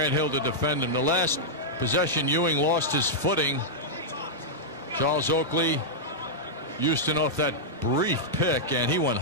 Hill to defend him. The last possession, Ewing lost his footing. Charles Oakley, Houston off that brief pick, and he went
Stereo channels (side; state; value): both; normal; correlation -0.07